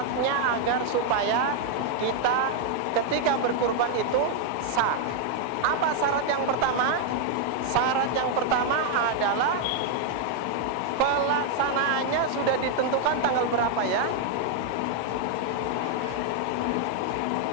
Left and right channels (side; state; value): both; different; correlation 0.00